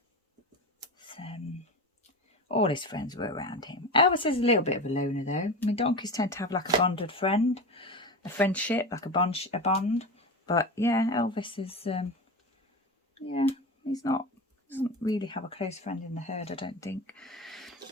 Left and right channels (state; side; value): normal; both; correlation 0.26